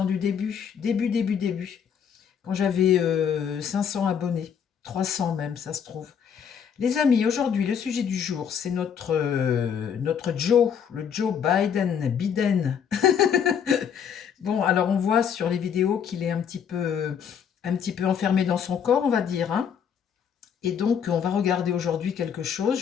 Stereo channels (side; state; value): right; quieter; 7.7 dB